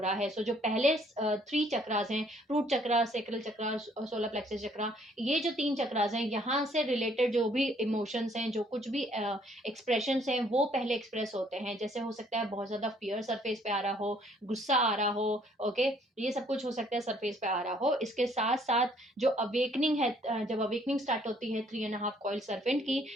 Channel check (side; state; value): both; normal; correlation 0.63